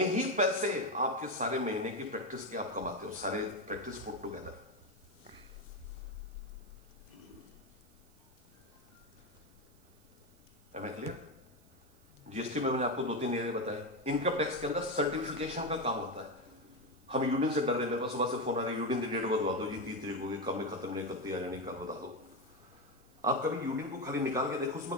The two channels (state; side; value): noise; right; hiss, 30 dB below the sound